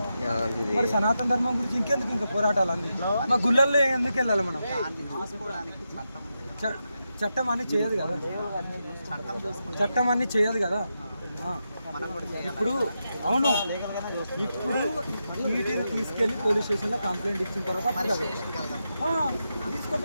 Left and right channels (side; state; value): both; inverted; correlation -0.87